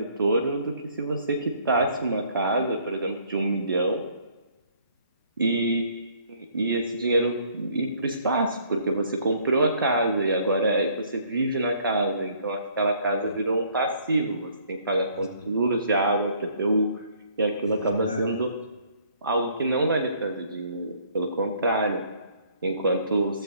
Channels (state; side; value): inverted; both; correlation -0.61